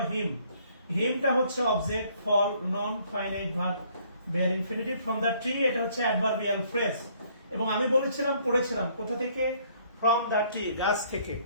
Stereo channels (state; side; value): inverted; both; correlation -0.63